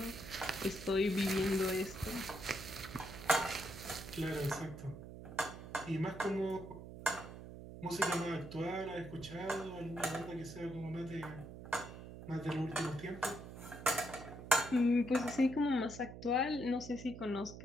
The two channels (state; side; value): noise; right; hum, 12 dB below the sound